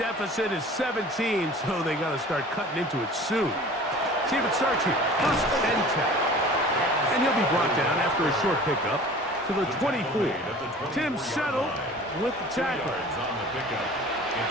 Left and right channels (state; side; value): normal; both; correlation 0.43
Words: deficit is 17, so they got to start cutting into it soon. See if it starts here. First and 10. And he'll be brought down after a short pickup to the 24. Tim Settle with the tackle. On the pickup.